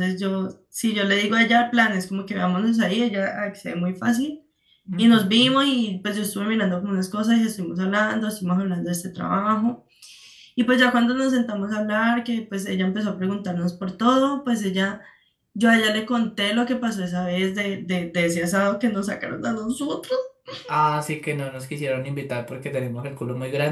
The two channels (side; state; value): both; identical; correlation 1.00